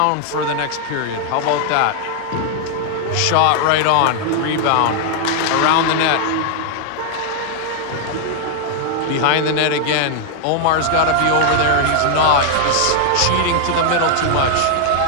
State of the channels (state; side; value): different; both; correlation 0.00